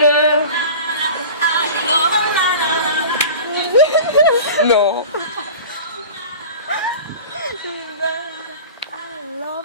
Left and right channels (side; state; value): both; inverted; correlation -0.37